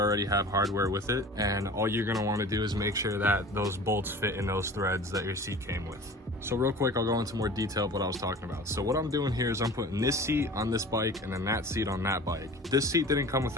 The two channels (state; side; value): normal; both; correlation 0.41